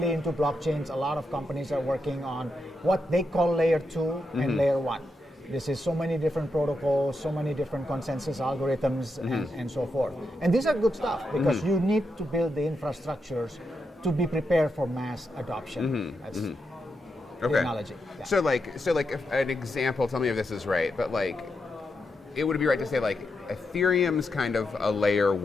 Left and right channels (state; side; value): normal; both; correlation 0.84